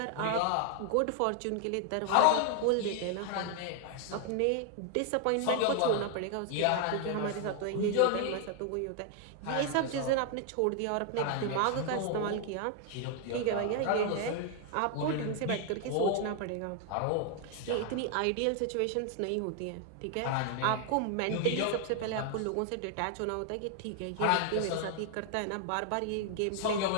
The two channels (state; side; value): different; both; correlation 0.00